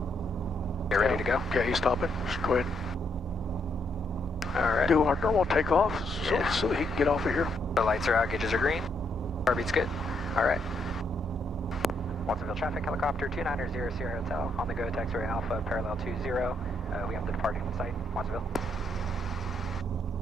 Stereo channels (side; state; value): both; normal; correlation 0.75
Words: Get ready to go. Okay, he's stopping. Just go ahead and Alright. do our normal takeoff Yeah. so he can get off of here. The lights are out, gauges are green. Car beat's good. Alright. Watsonville traffic, helicopter 2900 Sierra Hotel, on the go, taxiway Alpha, parallel 20. We have the departing site, Watsonville.